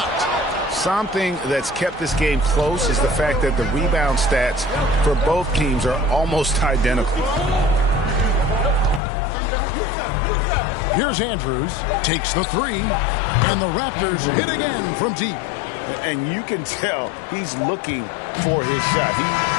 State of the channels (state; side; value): drops out; right; at 9.0 s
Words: Something that's kept this game close is the fact that the rebound stats for both teams are almost identical. Here's Andrews. Takes the three. And the Raptors hit again from deep. And you can tell he's looking for his shot. He